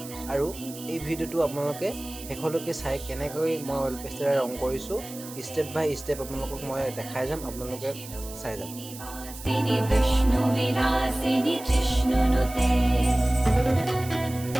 আৰু এই ভিডিঅ'টো আপোনালোকে শেষলৈকে চাই কেনেকৈ মই অইল পেষ্টেলেৰে ৰং কৰিছোঁ ষ্টেপ বাই ষ্টেপ আপোনালোকক মই দেখাই যাম, আপোনালোকে চাই যাম।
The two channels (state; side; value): noise; right; hiss, 14 dB below the sound